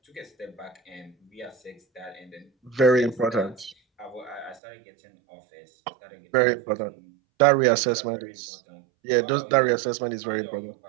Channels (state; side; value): drops out; left; at 4.6 s